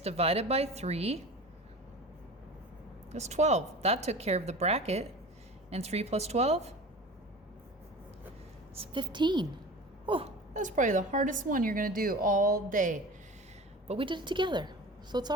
divided by 3 is 12. That took care of the bracket. And 3 plus 12 is 15. Oh, that's probably the hardest one you're going to do all day. But we did it together, so it's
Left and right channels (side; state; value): both; normal; correlation 0.36